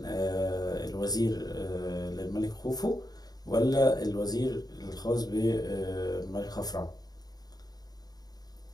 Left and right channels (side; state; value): right; late; 0.19 ms